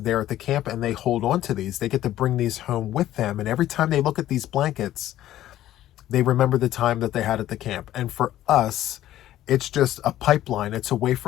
at the camp, and they hold on to these. They get to bring these home with them, and every time they look at these blankets, they remember the time that they had at the camp. And for us, it's just a pipeline. It's a way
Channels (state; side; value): quieter; right; 13.4 dB